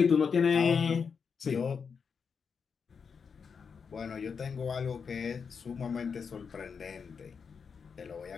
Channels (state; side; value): quieter; right; 6.0 dB